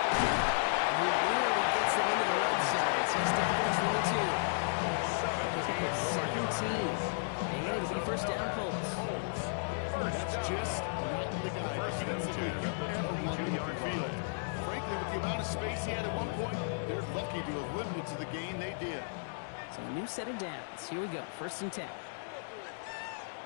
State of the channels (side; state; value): right; silent; digital silence